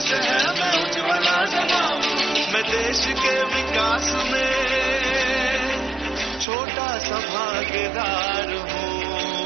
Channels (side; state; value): left; drops out; at 6.5 s